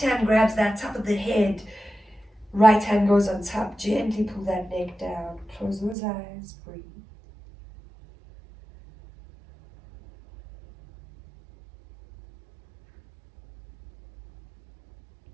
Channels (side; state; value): left; drops out; at 6.0 s